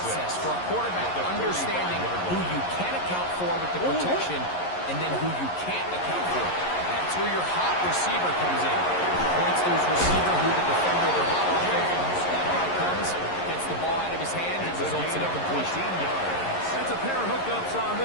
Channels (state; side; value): late; right; 11 ms